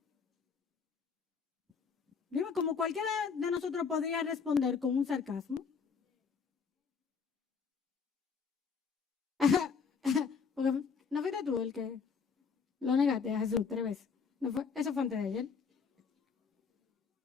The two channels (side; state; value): right; quieter; 5.8 dB